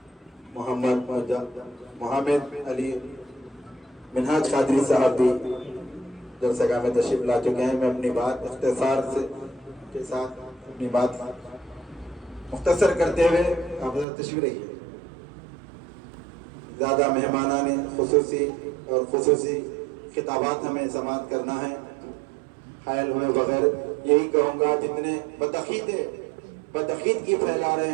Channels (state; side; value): drops out; left; at 14.1 s